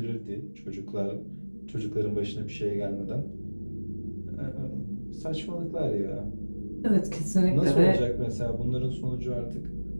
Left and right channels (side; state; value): both; inverted; correlation -1.00